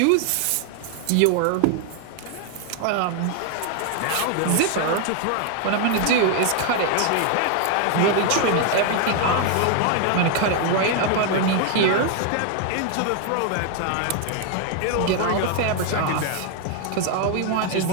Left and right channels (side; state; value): both; different; correlation 0.00